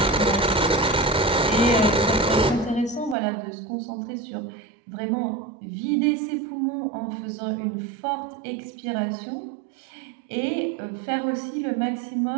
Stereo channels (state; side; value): drops out; left; at 3.2 s